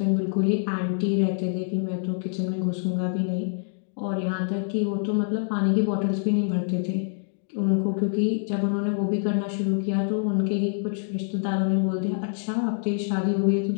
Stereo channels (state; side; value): silent; right; digital silence